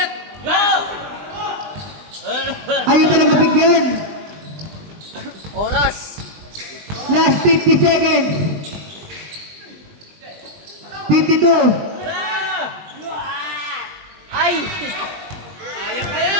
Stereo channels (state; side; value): late; left; 20 ms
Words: Ayaw talaga bigyan. Oras. Last 50 seconds. 52. Ay!